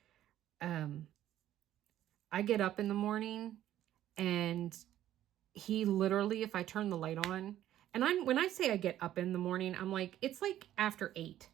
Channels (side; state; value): left; quieter; 12.5 dB